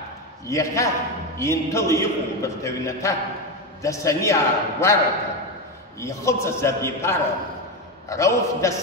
Яха, Интыл Иху Бартавината, Дасаниа Гуарата, Яхоца Забипара, Рауф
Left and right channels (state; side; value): normal; both; correlation 0.13